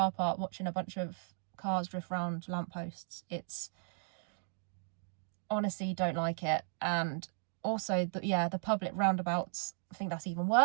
park watching a bunch of cars drift round lampposts. It's honestly, don't like it. And also, the public roundabouts, I think that's even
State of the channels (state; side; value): silent; left; digital silence